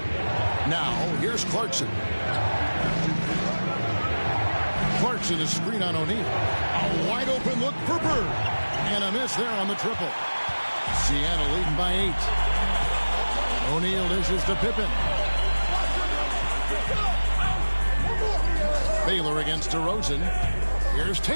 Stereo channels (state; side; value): inverted; both; correlation -1.00